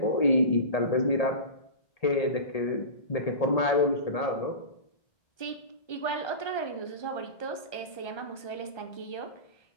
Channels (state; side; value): late; right; 1.3 ms